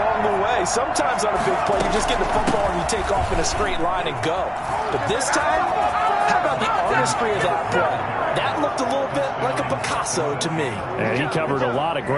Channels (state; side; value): identical; both; correlation 1.00